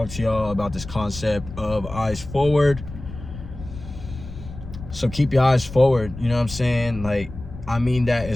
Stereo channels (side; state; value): left; noise; rumble, 12 dB below the sound